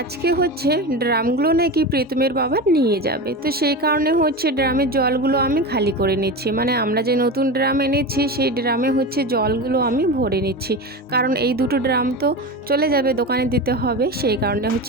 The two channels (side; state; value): both; normal; correlation 0.24